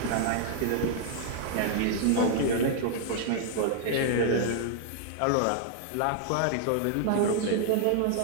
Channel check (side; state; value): both; different; correlation -0.01